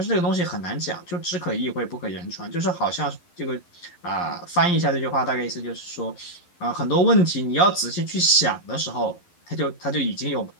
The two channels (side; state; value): right; late; 11 ms